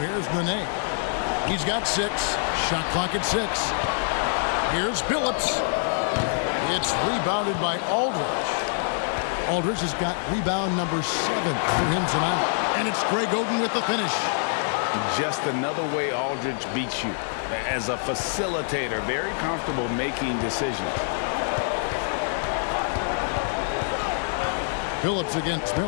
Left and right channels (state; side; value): silent; right; 61 dB below the other